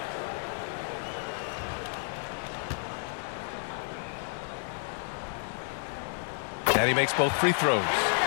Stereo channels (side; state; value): right; silent; 57 dB below the other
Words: And he makes both free throws.